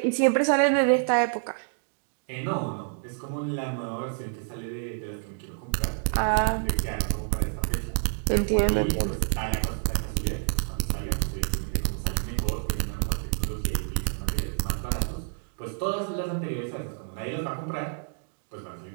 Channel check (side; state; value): left; silent; digital silence